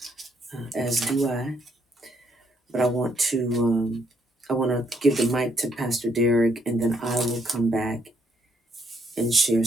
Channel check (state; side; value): normal; both; correlation 0.72